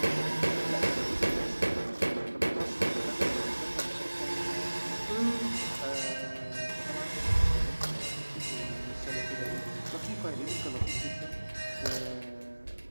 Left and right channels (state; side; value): inverted; both; correlation -1.00